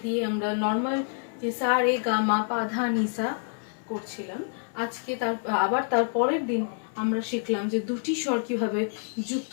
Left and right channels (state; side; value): silent; right; 60 dB below the other